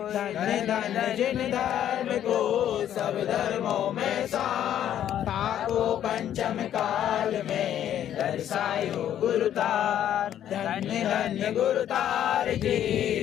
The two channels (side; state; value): right; quieter; 10.7 dB